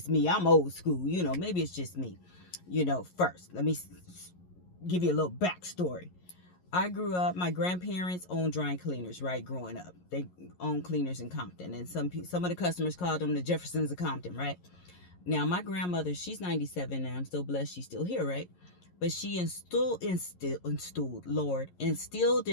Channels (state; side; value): late; right; 11 ms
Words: me. I'm old school, maybe it's just me. First, let me give you a little backstory. I grew up, my grandparents owned dry cleaners, right, growing up. They owned cleaners in Compton, and some of the customers called them the Jeffersons of Compton, right? Now, my grandmother, she's 97 now. I'm still blessed she's still here, right? But she instilled in